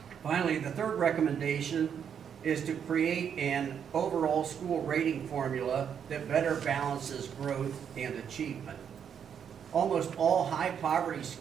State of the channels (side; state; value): left; quieter; 8.0 dB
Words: Finally, the third recommendation is to create an overall school rating formula that better balances growth and achievement. Almost all high poverty